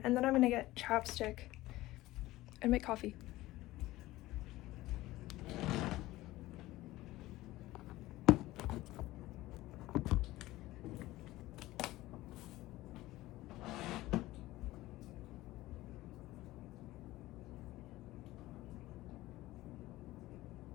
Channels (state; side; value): quieter; right; 17.4 dB